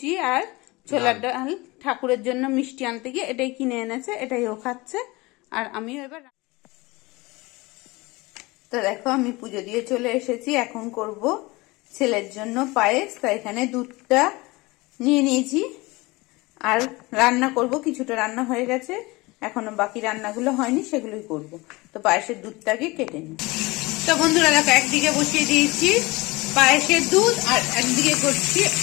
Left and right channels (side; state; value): right; quieter; 22.8 dB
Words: আর ছোলার ডাল। ঠাকুরের জন্য মিষ্টি আনতে গিয়ে এটাই কিনে এনেছে, এটাই ও খাচ্ছে। আর আমিও এবার তো দেখো আমি পুজো দিয়ে চলে এসেছি। এখন করব ছেলের জন্য পায়েস। তো এখানে দুধটা নিয়ে নিয়েছি আর রান্না করব। কিছুটা রান্না হয়ে গেছে, এখনো বাকি রান্নাগুলো হয়নি, সেগুলোই করব। তো পায়েসের দুধটাকে কেটে নিই। তো বন্ধুরা দেখো একদিকে বসিয়ে দিয়েছি পায়েসের দুধ আর একদিকে করছি